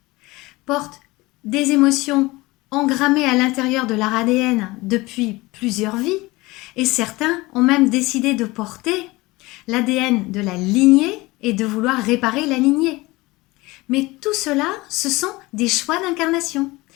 portent des émotions engrammées à l'intérieur de leur ADN depuis plusieurs vies, et certains ont même décidé de porter l'ADN de la lignée et de vouloir réparer la lignée. Mais tout cela, ce sont des choix d'incarnation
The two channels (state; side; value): quieter; right; 21.5 dB